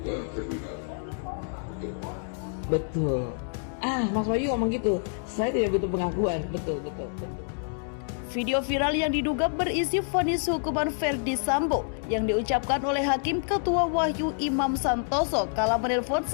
terlebih dahulu. Betul. Mas Wahyu ngomong gitu. Saya tidak butuh pengakuan. Betul. Video viral yang diduga berisi vonis hukuman Ferdy Sambo yang diucapkan oleh Hakim Ketua Wahyu Imam Santoso kala menelpon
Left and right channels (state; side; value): silent; right; digital silence